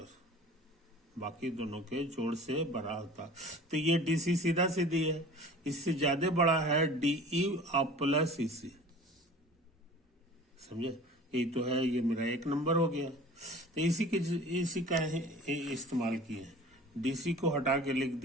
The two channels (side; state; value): both; normal; correlation 0.43